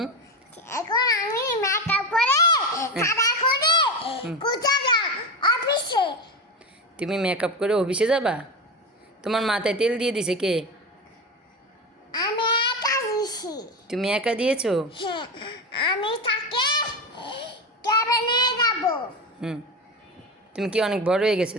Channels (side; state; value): both; normal; correlation 0.20